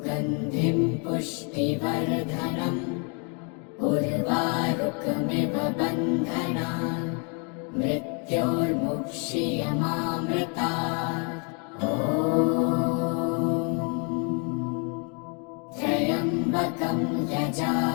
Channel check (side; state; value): right; quieter; 37.6 dB